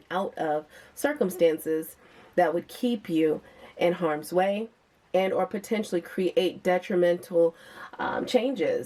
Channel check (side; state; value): both; identical; correlation 1.00